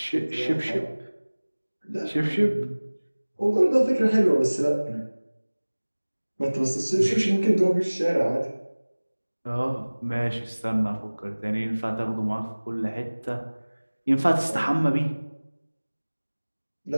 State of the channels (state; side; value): inverted; both; correlation -1.00